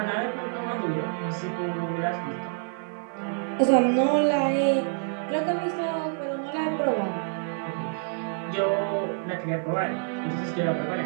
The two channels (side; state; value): left; silent; 60 dB below the other